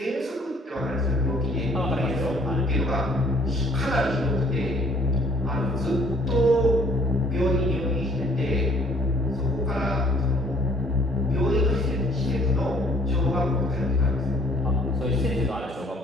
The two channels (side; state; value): both; normal; correlation 0.59